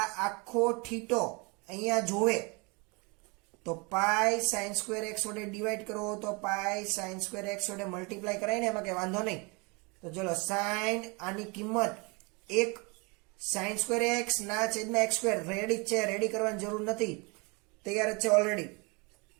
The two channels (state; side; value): quieter; left; 29.4 dB